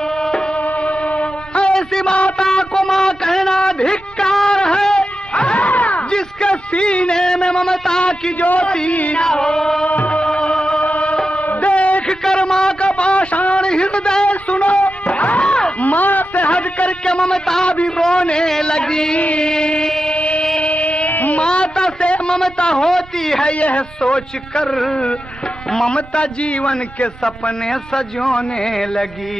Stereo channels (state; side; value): normal; both; correlation 0.90